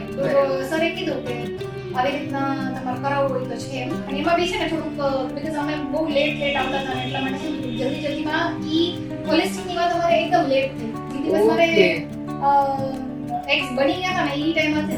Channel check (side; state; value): both; identical; correlation 1.00